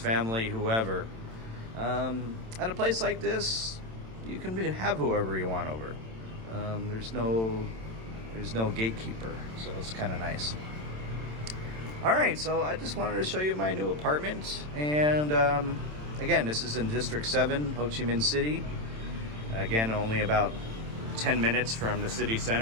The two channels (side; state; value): left; late; 27 ms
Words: whoever. At a place like this, you can have whoever you want over. There's no gatekeeper, so it's kind of nice. All right, so I just wanted to show you my new apartment, and again, this is in District 7, Ho Chi Minh City. Again, only about 10 minutes from the city